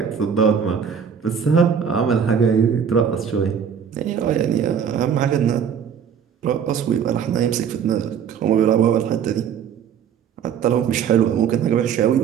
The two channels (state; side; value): quieter; left; 7.6 dB